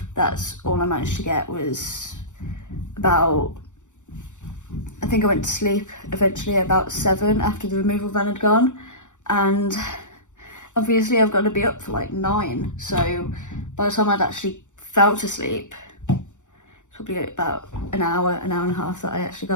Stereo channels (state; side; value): late; right; 0.85 ms